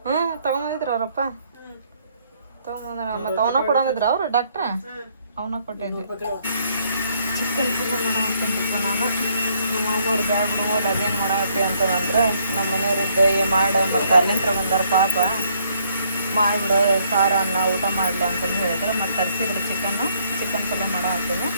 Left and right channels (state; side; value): inverted; both; correlation -0.68